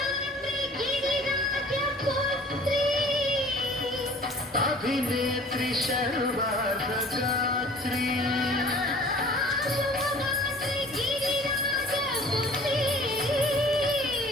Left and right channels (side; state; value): both; normal; correlation 0.48